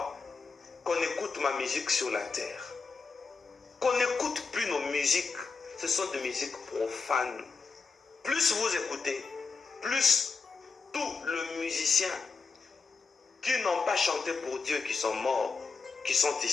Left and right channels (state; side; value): quieter; right; 4.8 dB